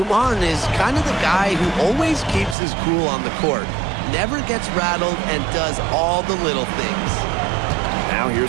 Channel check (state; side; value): drops out; left; at 2.6 s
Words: is kind of the guy who always keeps his cool on the court, never gets rattled, and does all the little things. Now